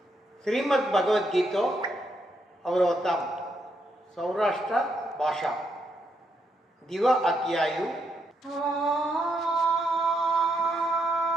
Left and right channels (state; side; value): normal; both; correlation 0.78